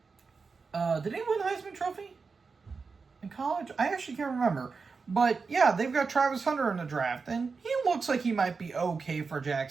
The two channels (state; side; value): quieter; left; 4.8 dB